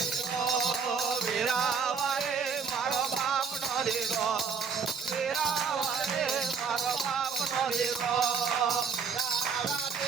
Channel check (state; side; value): quieter; left; 5.9 dB